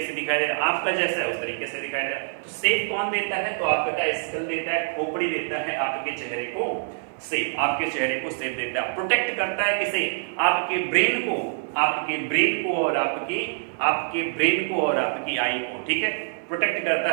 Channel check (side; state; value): left; silent; 61 dB below the other